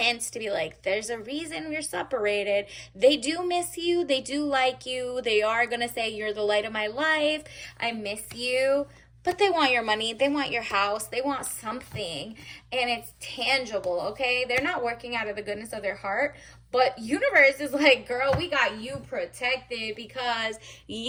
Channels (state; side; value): identical; both; correlation 1.00